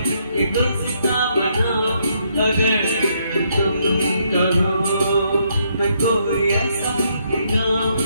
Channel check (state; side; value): inverted; both; correlation -0.73